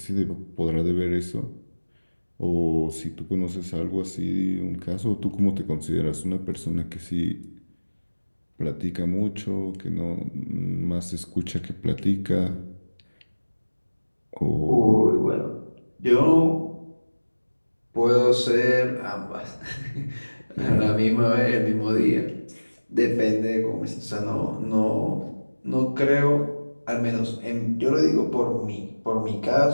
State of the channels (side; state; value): both; inverted; correlation -1.00